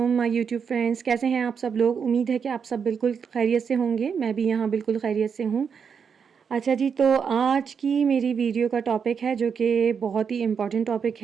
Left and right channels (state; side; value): quieter; left; 6.6 dB